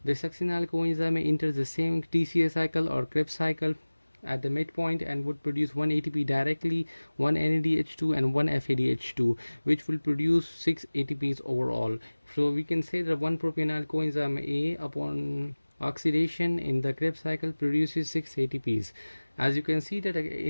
The succinyl coenzyme A enters the same TCA cycle or Krebs cycle at the midpoint and would produce 1 ATP directly, 1 NADH2 and 1 FADH2, which will produce 6 ATPs overall. So we can say that 1 propionyl coenzyme A upon oxidation in the Krebs cycle produces 6 ATPs. As you can see that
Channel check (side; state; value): both; inverted; correlation -1.00